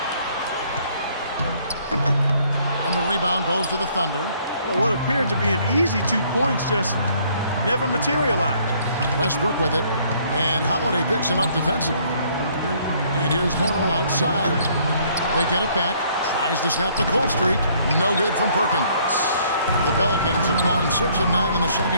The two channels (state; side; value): inverted; both; correlation -0.63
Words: And the rebound goes to the Thunder. Well, what appeared to be an easy 2 points just never materialized. Westbrook with it. And Holiday picks him up defensively. And here's Morrow outside. They get it back. Tries to snap the cold streak. No good from Perkins. The Pelicans have gone 6 of 9 in the